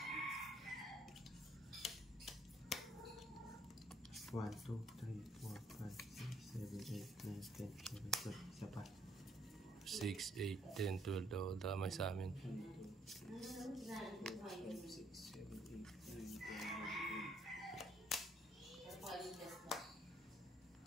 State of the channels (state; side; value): normal; both; correlation 0.68